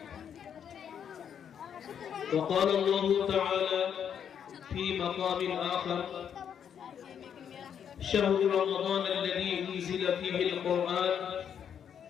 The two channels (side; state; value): right; quieter; 8.3 dB